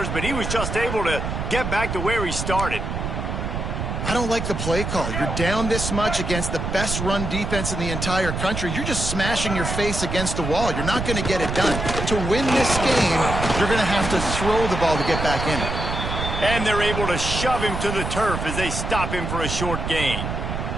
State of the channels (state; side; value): noise; right; rumble, 3 dB below the sound